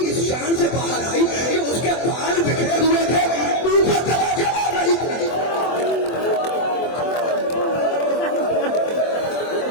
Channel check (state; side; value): late; right; 24 ms